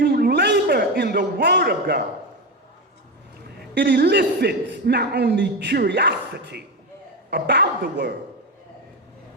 labor in the Word of God, it elicits not only curiosity about the Word,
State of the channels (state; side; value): normal; both; correlation 0.15